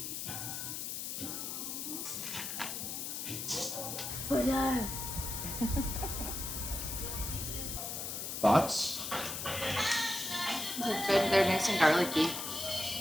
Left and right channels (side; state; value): left; noise; hiss, 4 dB below the sound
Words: Thoughts? They're good. They're nice and garlicky.